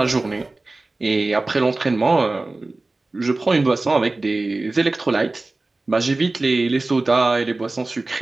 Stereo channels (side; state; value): left; quieter; 3.2 dB